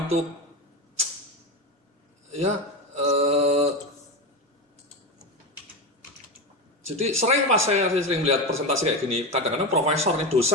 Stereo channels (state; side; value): normal; both; correlation 0.18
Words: itu. Ya, jadi sering Mas saya sering melihat presentasi kayak gini. Kadang-kadang profesor nih,